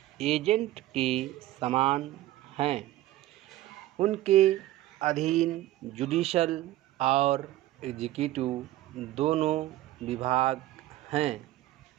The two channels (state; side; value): quieter; left; 15.5 dB